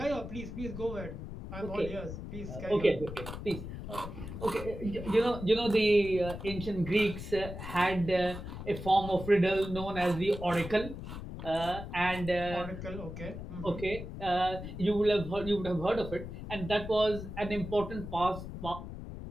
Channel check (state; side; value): noise; left; rumble, 9 dB below the sound